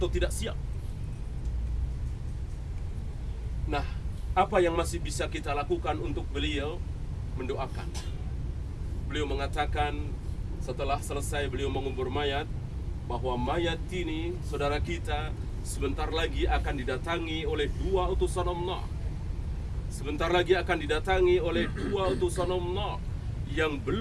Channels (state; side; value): identical; both; correlation 1.00